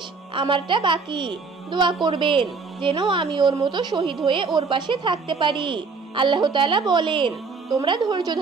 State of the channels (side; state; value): left; quieter; 4.6 dB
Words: আমারটা বাকি। দোয়া করবেন যেন আমি ওর মতো শহীদ হয়ে ওর পাশে থাকতে পারি। আল্লাহ তাআলা বলেন, তোমরা ধৈর্য